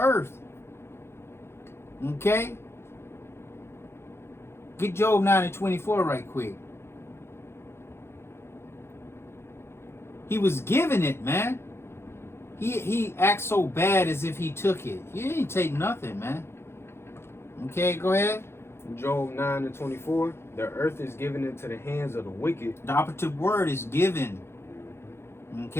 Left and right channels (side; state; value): right; late; 0.12 ms